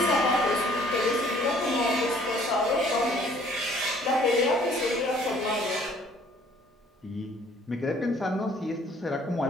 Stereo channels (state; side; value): normal; both; correlation 0.58